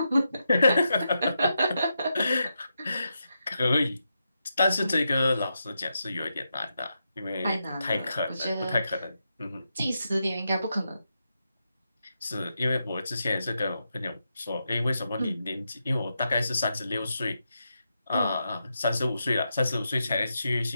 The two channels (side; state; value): both; inverted; correlation -0.86